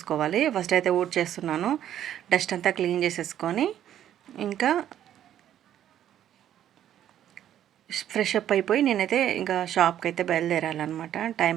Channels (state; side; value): quieter; left; 11.0 dB